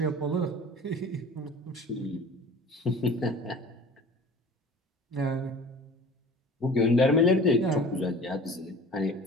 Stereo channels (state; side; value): normal; both; correlation 0.43